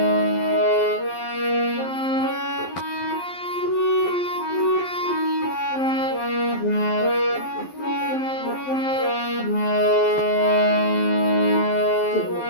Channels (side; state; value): right; late; 12 ms